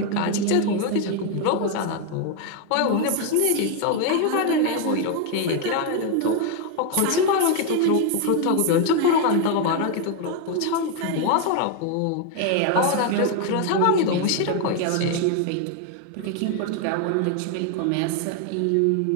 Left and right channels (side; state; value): both; different; correlation 0.01